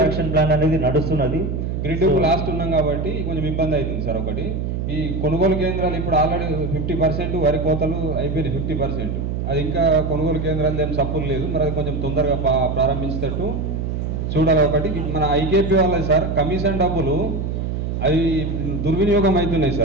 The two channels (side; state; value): right; noise; hum, 2 dB below the sound